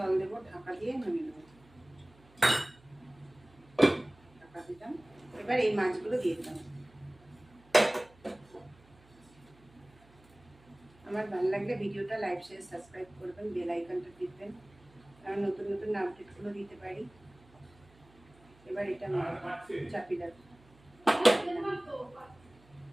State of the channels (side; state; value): right; noise; hum, 27 dB below the sound